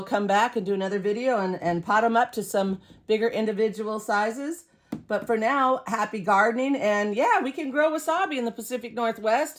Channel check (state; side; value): identical; both; correlation 1.00